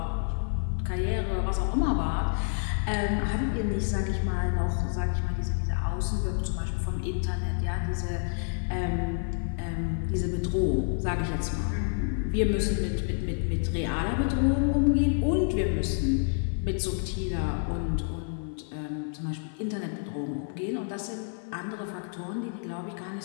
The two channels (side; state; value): right; silent; 55 dB below the other